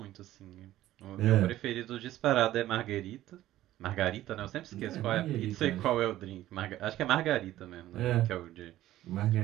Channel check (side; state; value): left; quieter; 14.4 dB